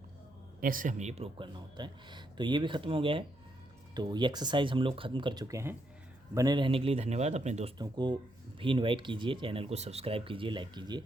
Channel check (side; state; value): right; noise; hum, 28 dB below the sound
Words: ऐसे हमें ये प्रूव करना होता है। तो ये भी ख़त्म हो गया है। तो ये एक्सरसाइज हम लोग ख़त्म कर चुके हैं। बने रहने के लिए धन्यवाद। अपने दोस्तों को भी इनवाइट कीजिए, चैनल को सब्सक्राइब कीजिए, लाइक कीजिए।